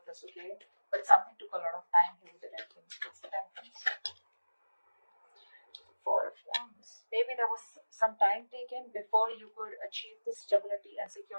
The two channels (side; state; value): both; inverted; correlation -1.00